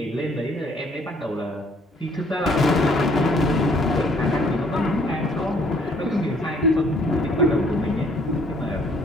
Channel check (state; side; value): normal; both; correlation 0.62